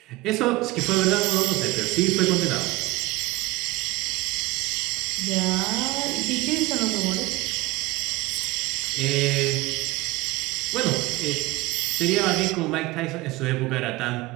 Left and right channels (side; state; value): left; quieter; 21.5 dB